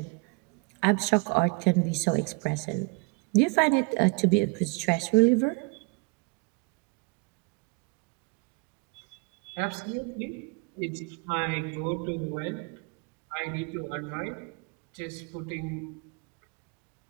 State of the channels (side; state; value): left; quieter; 31.2 dB